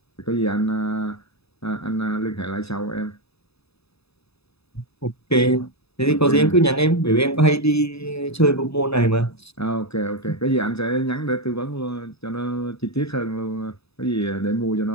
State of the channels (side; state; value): right; late; 0.79 ms